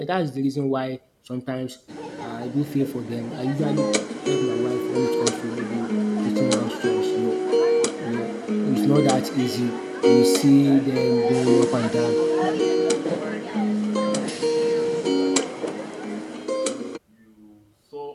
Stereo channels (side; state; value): both; identical; correlation 1.00